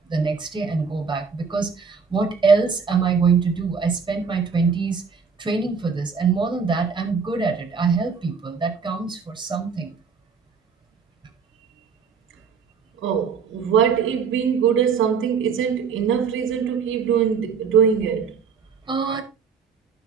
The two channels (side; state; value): left; quieter; 5.8 dB